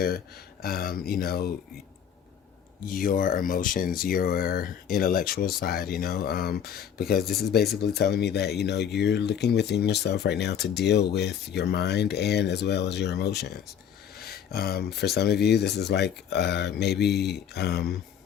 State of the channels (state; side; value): quieter; right; 8.6 dB